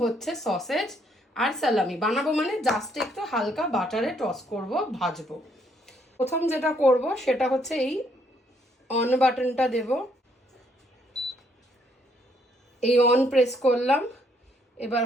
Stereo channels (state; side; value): normal; both; correlation 0.70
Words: হচ্ছে সসেজ আর সালামি বানাবো, মানে জাস্ট একটু হালকা বাটারে টস করব, ভাজবো। প্রথম যেটা করব সেটা হচ্ছে এই অন বাটনটা দেব। এই অন প্রেস করলাম। এবার